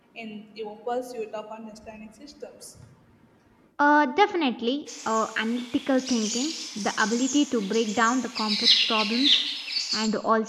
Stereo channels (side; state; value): both; identical; correlation 1.00